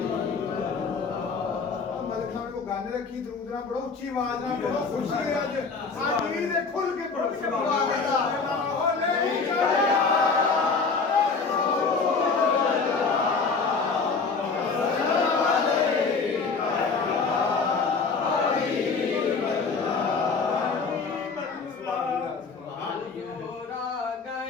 गाने रखी दरूद ना पढ़ो उच्ची आवाज ना पढ़ो खुशी है आज आज भी खुल के पढ़ो।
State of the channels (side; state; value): right; quieter; 4.7 dB